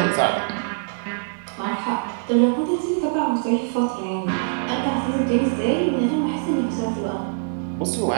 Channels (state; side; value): silent; left; digital silence